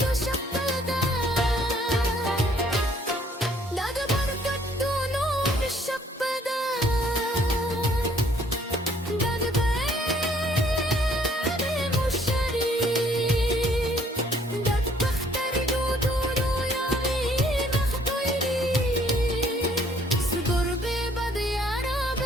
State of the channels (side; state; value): both; normal; correlation 0.62